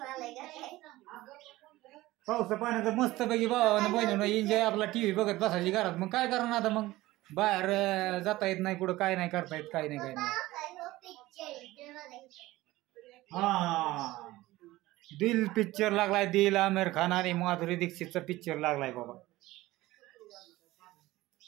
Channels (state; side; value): quieter; left; 17.8 dB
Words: आलाय का काय. पावसा पाण्याचं मस्त पैकी भावानं बहिणीनं एन्जॉय आपला टीव्ही बघत बसायची घरात. मग काय करणार आता, मग बाहेर जाता येत नाही कुठं, काय नाही करता येत, काय नाही काय नाही. हा दिल पिक्चर लागलाय. दिल आमिर खान आणि माधुरी दीक्षितचा पिक्चर लागलाय बाबा.